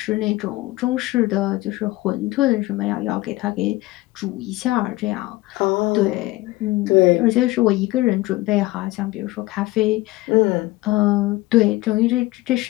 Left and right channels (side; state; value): right; quieter; 19.6 dB